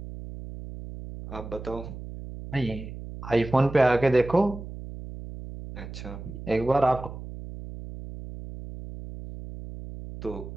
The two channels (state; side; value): noise; right; hum, 11 dB below the sound